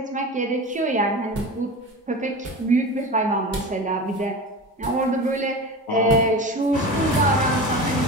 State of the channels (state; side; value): normal; both; correlation 0.29